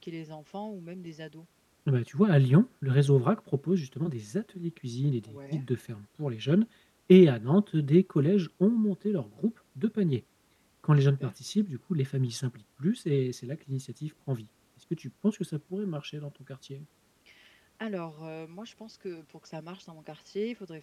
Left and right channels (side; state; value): both; identical; correlation 1.00